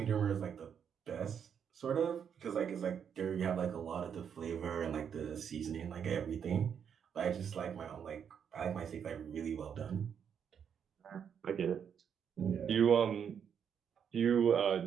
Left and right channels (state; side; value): quieter; left; 7.7 dB